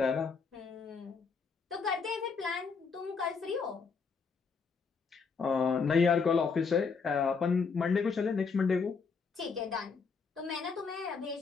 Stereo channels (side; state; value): right; quieter; 5.2 dB